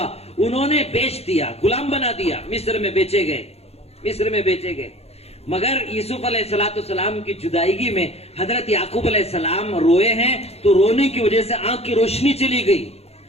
انہوں نے بیچ دیا، غلام بنا دیا، مصر میں بیچے گئے، مصر میں بیچے گئے. مگر یوسف علیہ السلام کی جدائیگی میں حضرت یعقوب علیہ السلام روئے ہیں تو رونے کی وجہ سے آنکھ کی روشنی چلی گئی.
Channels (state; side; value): late; right; 0.30 ms